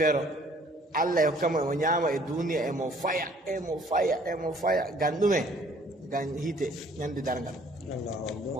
Allah e hokkamo emo ñaama e duniya emo faya ngam ɗume ngam hiite ñande darngal o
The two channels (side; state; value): both; normal; correlation 0.58